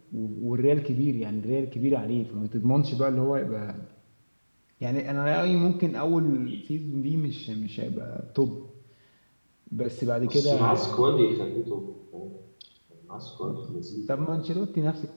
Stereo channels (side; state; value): both; inverted; correlation -1.00